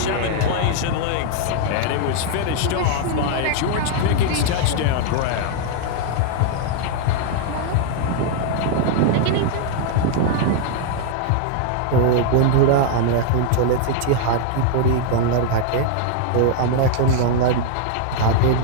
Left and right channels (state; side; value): different; both; correlation 0.00